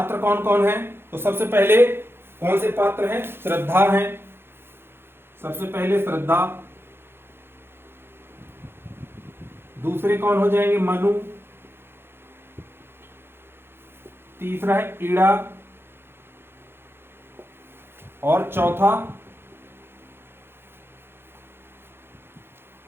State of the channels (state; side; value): late; left; 0.11 ms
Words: कौन कौन है? तो सबसे पहले कौन से पात्र हैं? श्रद्धा है, सबसे पहले श्रद्धा। दूसरे कौन हो जाएंगे? मनु। तीसरा है ईड़ा और